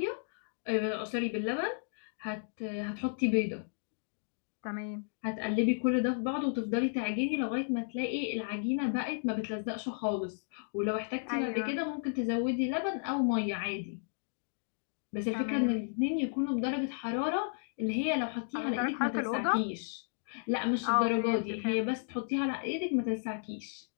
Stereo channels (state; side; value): silent; right; digital silence